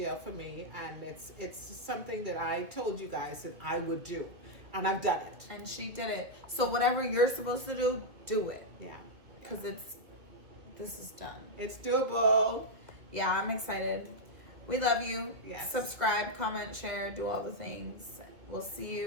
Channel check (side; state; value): left; late; 2.4 ms